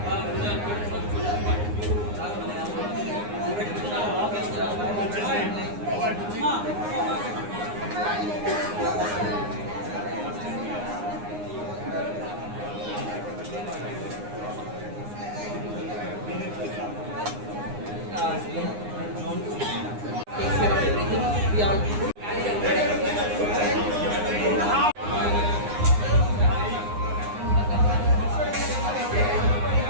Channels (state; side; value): late; left; 9.7 ms